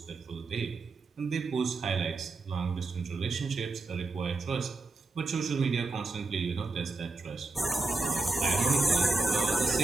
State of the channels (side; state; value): left; quieter; 3.5 dB